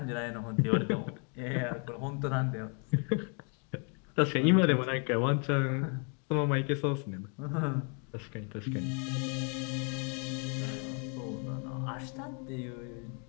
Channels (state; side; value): quieter; right; 38.8 dB